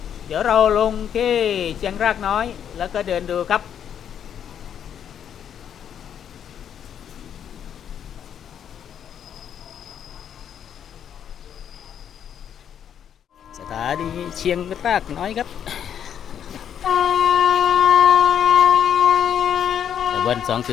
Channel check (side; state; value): right; quieter; 8.9 dB